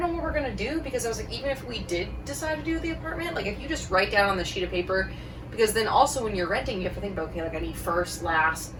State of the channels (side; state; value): both; identical; correlation 1.00